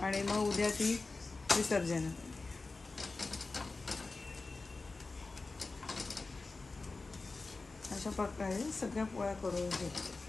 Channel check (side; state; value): right; quieter; 3.7 dB